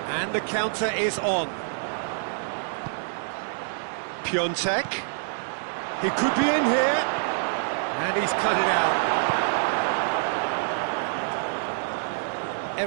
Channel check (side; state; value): left; silent; 61 dB below the other